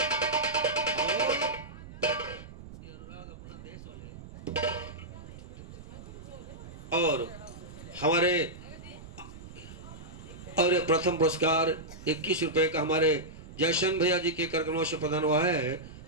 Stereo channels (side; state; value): right; noise; rumble, 15 dB below the sound